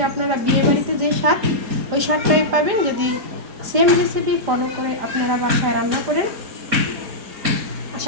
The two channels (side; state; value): left; late; 5.0 ms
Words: আপনারা বিয়েবাড়িতে যে স্বাদ ওই স্বাদটাই পাবেন যদি সেম রেসিপি ফলো করে আপনারা বাসায় রান্না করেন।